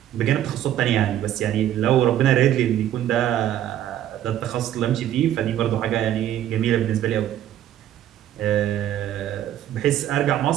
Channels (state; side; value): quieter; left; 11.7 dB